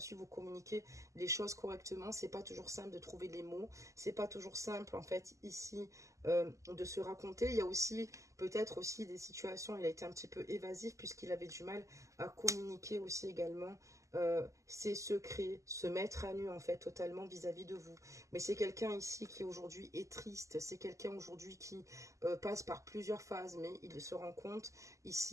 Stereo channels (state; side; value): late; left; 0.16 ms